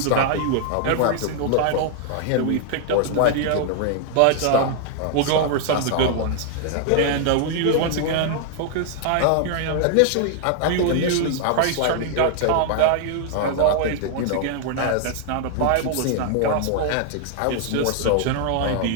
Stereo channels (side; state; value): both; different; correlation 0.00